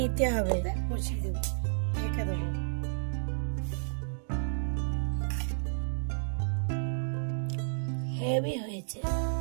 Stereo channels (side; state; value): left; silent; digital silence